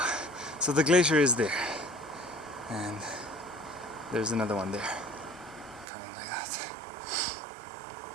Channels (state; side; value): drops out; left; at 5.9 s